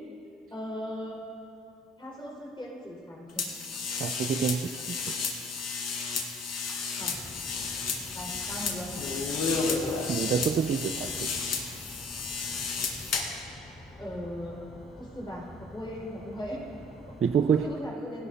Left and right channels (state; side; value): normal; both; correlation 0.53